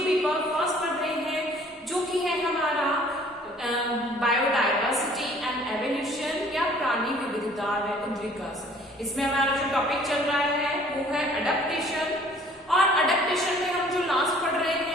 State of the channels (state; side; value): normal; both; correlation 0.54